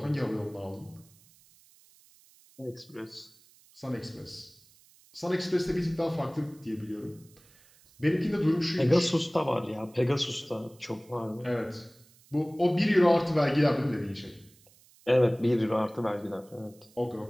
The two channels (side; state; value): right; noise; hiss, 28 dB below the sound